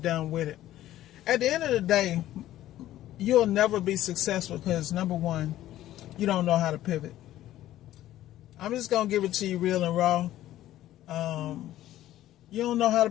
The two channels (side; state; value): right; quieter; 13.8 dB